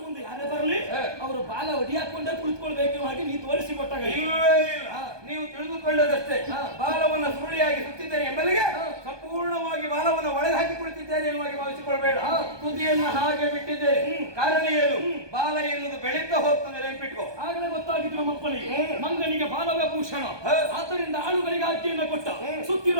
ಮುಂದೆ ಯಾರೇ ಬರಲಿ ಅವರು ಬಾಲ ಒಡಿಯಾಕೊಂಡೇ ಕುಳಿತುಕೊಳ್ಬೇಕು ಹಾಗೆ ನೀ ತೋರಿಸಿಕೊಟ್ಟಾಗ ನೀವು ತಿಳಿದುಕೊಳ್ಳದಷ್ಟೇ. ಬಾಲವನ್ನು ಸುರುಳಿಯಾಗಿ ಸುತ್ತಿದ್ದೇನೆ ಎಂಬಲಿಗೆ ಸಂಪೂರ್ಣವಾಗಿ ಬಾಲವನ್ನು ಒಳಗೆ ಹಾಕಿ ಕುಳಿತಿದ್ದೇನೆ ಎನ್ನುವಾಗಿ ಭಾವಿಸಿಕೊಳ್ಬೇಡ. ತುದಿಯನ್ನು ಹಾಗೆ ಬಿಟ್ಟಿದ್ದೇನೆ. ಕಾರಣ ಏನು? ಬಾಲ ಎನ್ನುವುದು ಬೆಳೀತಾ ಹೋಗ್ತದೆ, ನೆನಪಿಟ್ಕೋ. ಆಗಲೇ ಗೊತ್ತಾಗಿದ್ದು ನಮ್ಮಪ್ಪನಿಗೆ ಮಂಗನಿಗೆ ಬಾಲವೇ ಭೂಷಣ. ಆದ್ದರಿಂದ ಆಳುಗಳಿಗೆ ಆಜ್ಞೆಯನ್ನು ಕೊಟ್ಟ.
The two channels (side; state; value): left; late; 1.2 ms